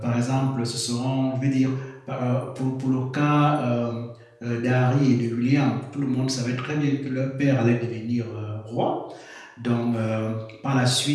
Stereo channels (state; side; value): identical; both; correlation 1.00